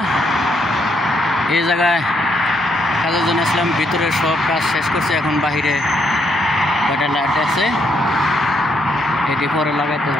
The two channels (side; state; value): both; normal; correlation 0.74